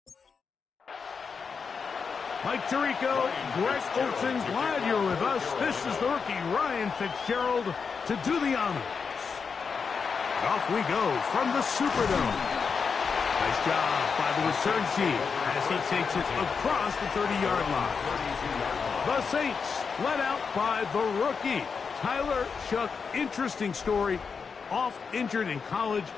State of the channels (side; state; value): right; quieter; 5.6 dB